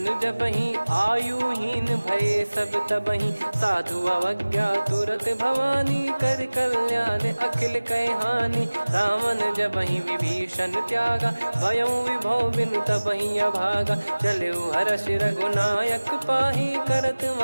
जबहि आयुहीन भय सब तबहि साधु अवज्ञा तुरत भवानी कर कल्याण अखिल कह हानि रावण जबहि विभीषण त्यागा भयउ विभव बिनु तबहि अभागा चलऊ हर्ष रघुनायक पाही करत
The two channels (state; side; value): inverted; both; correlation -1.00